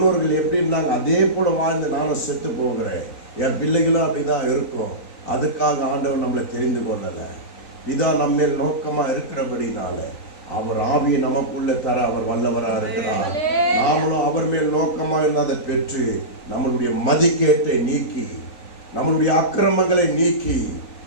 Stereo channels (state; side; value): late; right; 3.9 ms